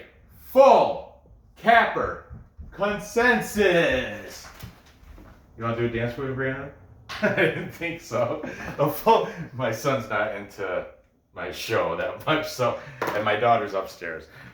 full capper consensus. You want to do a dance with me, Brandon? I didn't think so. My son's not into my show that much, so, and my daughter's upstairs.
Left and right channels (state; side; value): identical; both; correlation 1.00